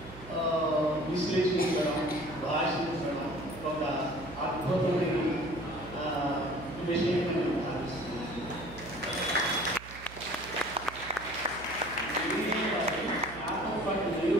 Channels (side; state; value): right; noise; hum, 16 dB below the sound